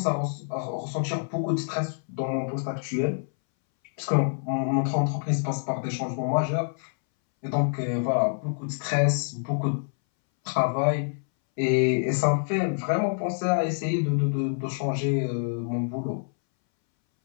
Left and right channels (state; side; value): silent; right; 60 dB below the other